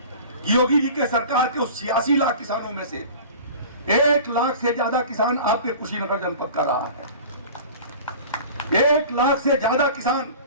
कि योगी जी के सरकार के उस 86 लाख किसानों में से 1 लाख से ज्यादा किसान आपके कुशीनगर जनपद का रहा है। 1 लाख से ज्यादा किसान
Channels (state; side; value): inverted; both; correlation -0.40